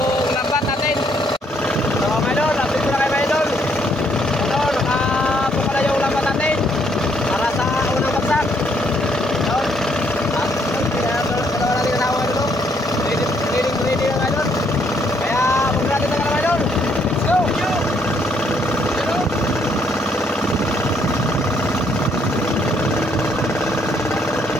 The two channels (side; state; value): both; normal; correlation 0.70